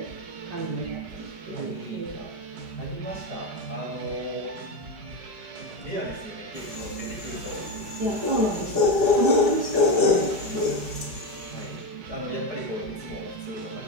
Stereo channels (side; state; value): left; late; 4.6 ms